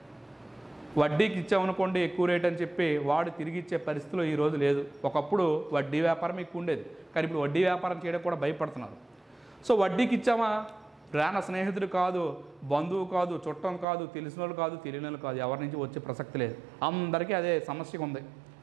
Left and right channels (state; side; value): drops out; left; at 13.9 s